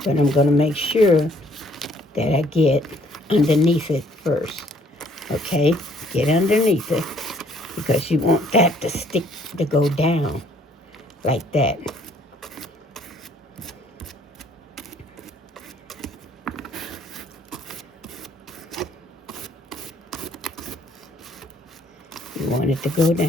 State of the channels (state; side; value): normal; both; correlation 0.62